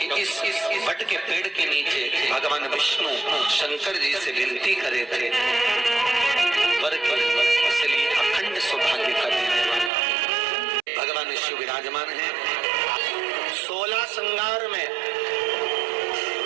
इस वट के पेड़ के नीचे भगवान विष्णु शंकर जी से विनती करे थे वर की, इसलिए अखंड सौभाग्य का देने वाला भगवान शिव विराजमान है। 16 श्रृंगार में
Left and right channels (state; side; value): drops out; left; at 9.9 s